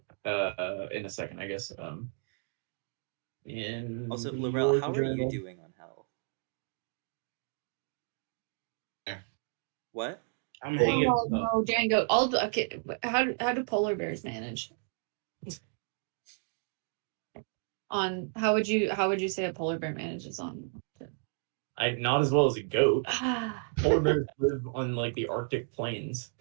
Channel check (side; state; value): left; silent; 56 dB below the other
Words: in a second, I guess. In Also, your Laurel, how are you journal. doing on health? Yeah. What? I'm hanging. Oh no, giant goat. Okay. How do polar bears manage? On how would you say a polar bear manages on? Not as well as a goat. Ah. Polar bears live on like the Arctic plains.